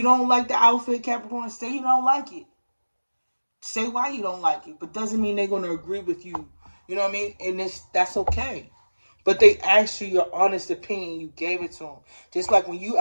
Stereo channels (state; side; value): inverted; both; correlation -1.00